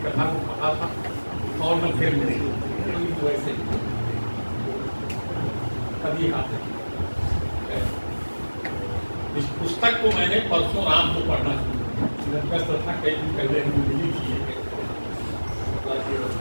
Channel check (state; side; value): inverted; both; correlation -1.00